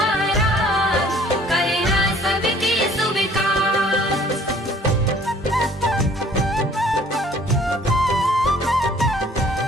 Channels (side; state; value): both; normal; correlation 0.55